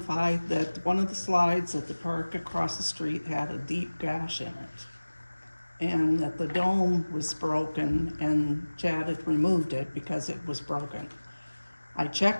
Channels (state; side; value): inverted; both; correlation -1.00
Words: that one of the slides at the park across the street had a deep gash in it. And that the dome was broken and Chad had removed it because it was broken. I